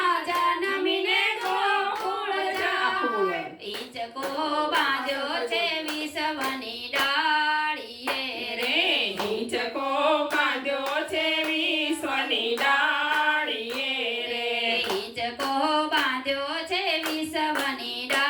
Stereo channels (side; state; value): both; identical; correlation 1.00